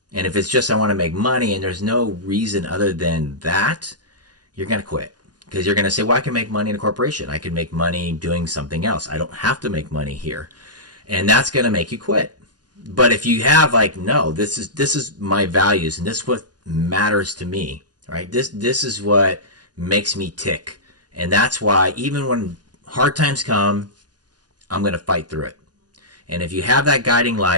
And if it's just I want to make money and there's no reason other than that, you're going to quit. Because you're going to say, well, I can make money in a corporation. I can make money doing something else. I don't have to make money here. And that's going to make you quit. But if you have no, this is my values and this is what matters to me, right? This is what makes me tick. And that's why even when hard times come, I'm going to fight through it. And if you have that guiding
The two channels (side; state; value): left; late; 0.69 ms